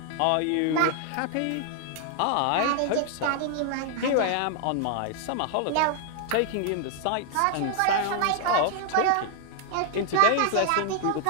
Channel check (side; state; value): both; different; correlation 0.00